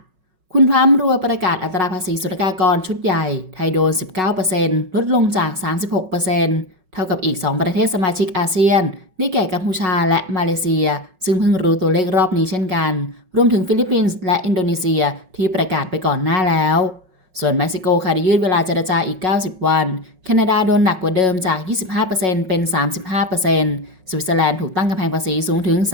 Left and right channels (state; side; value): late; left; 5.4 ms